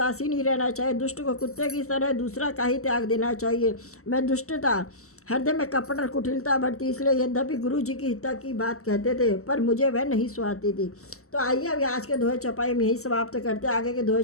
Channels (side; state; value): right; late; 0.63 ms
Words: ही रहना चाहिए, दुष्ट को कुत्ते की तरह दूसरा का ही त्याग देना चाहिए। मैं दुष्टता हृदय में कपट और कुटिलता बढ़ती, इसलिए यद्यपि गुरु जी की हिता की बात कहते थे पर मुझे वह नहीं सुहाती थी। तो आइए अभी आज के दोहे चौपाई में यही समाप्त करते हैं। आगे के दोहे